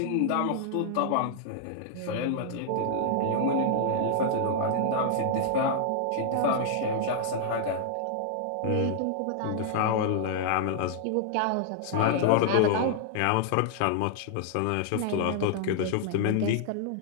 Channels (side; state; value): both; different; correlation -0.01